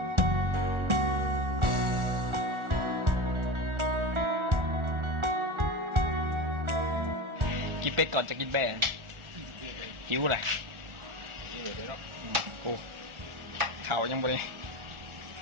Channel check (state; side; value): late; left; 1.4 ms